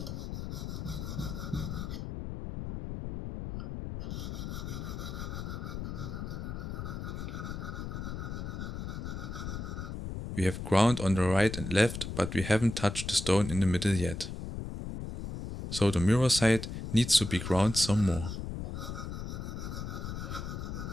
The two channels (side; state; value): left; noise; rumble, 6 dB below the sound